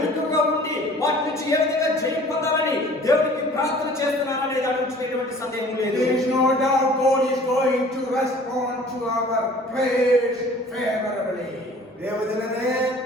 ఉండి వాటి నుంచి ఏ విధంగా జయం పొందాలని దేవునికి ప్రార్థన చేస్తున్నారనే దాని గురించి ఎటువంటి సందేహం లేదు. There is no doubt God is going to respond to our prayers favorably. ದೇವಜನರೇ,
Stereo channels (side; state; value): both; normal; correlation 0.49